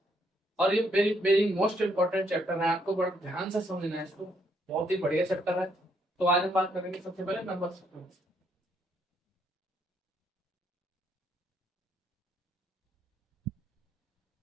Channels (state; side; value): normal; both; correlation 0.72